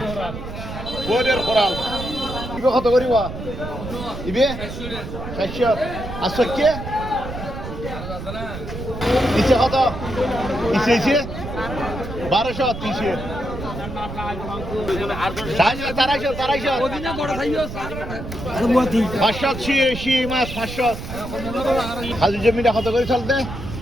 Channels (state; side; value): noise; right; rumble, 8 dB below the sound